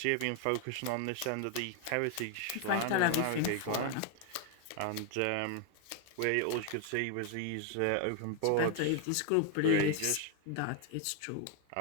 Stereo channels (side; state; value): both; different; correlation 0.01